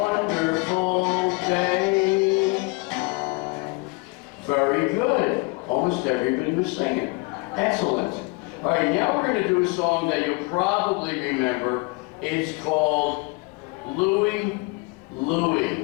he was singing. Excellent. All right, now we're going to do a song that you'll probably remember. It's called Louie, Louie.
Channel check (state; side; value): quieter; right; 27.1 dB